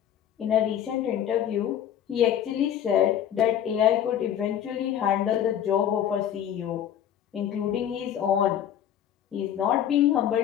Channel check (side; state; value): right; quieter; 10.1 dB